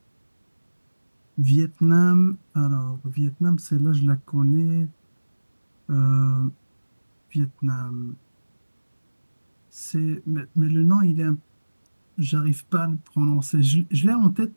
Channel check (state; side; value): inverted; both; correlation -1.00